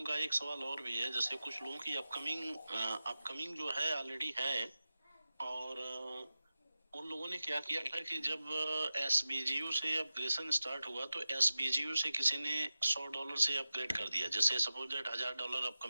का एक सवाल और भी है, जैसे कुछ लोगों की अपकमिंग जो है ऑलरेडी है, और उन लोगों ने क्या किया था कि जब SBGU से अपग्रेडेशन स्टार्ट हुआ तो SBGU से किसी ने $100 से अपग्रेड कर दिया। जैसे सपोज दैट $1000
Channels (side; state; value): both; inverted; correlation -0.94